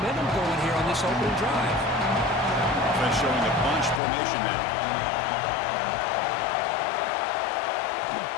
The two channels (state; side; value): drops out; right; at 4.0 s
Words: going here on this opening drive. Offense showing a bunch formation now.